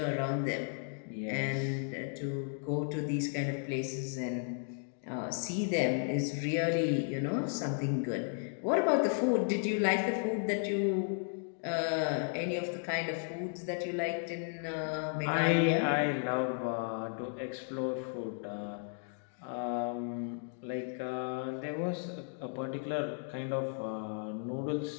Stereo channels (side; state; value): right; silent; 55 dB below the other